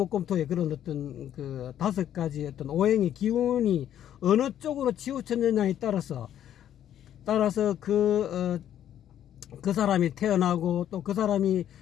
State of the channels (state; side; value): quieter; right; 10.7 dB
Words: 그런 어떤 그 5가지 어떤 오행의 기운이 어느 쪽으로 치우쳤느냐에 따라서 그 사람이 태어나고 또 그 사람이